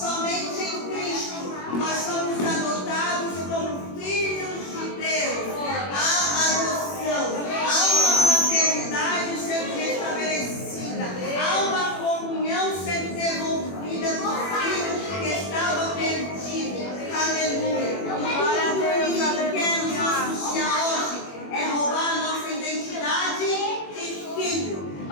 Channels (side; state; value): right; late; 21 ms